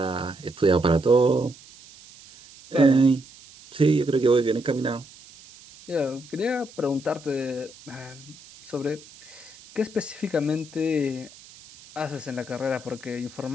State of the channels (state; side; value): noise; right; hiss, 21 dB below the sound